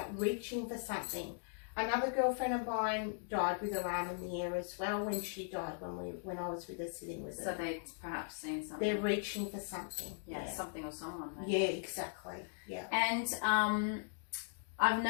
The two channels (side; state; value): right; silent; digital silence